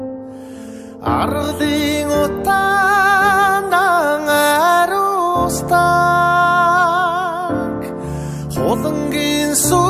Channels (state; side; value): identical; both; correlation 1.00